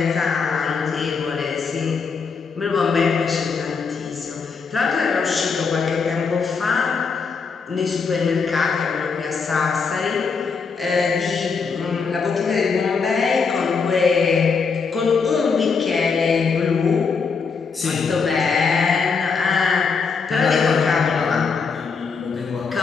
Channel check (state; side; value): quieter; right; 5.3 dB